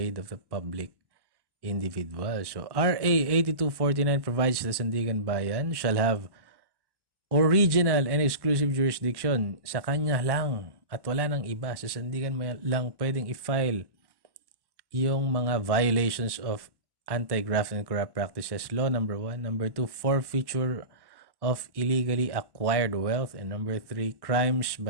of the public individual. So RA 8249 provides the Sandigan Bayan shall have original and exclusive jurisdiction. Sa kanya lang at wala nang iba. Sa Sandigan Bayan lang pwedeng i-file yung mga violations of anti-graft and corrupt practices law, number 1. Number 2, forfeiture of illegally acquired wealth. And number 3, crimes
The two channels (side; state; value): left; late; 1.1 ms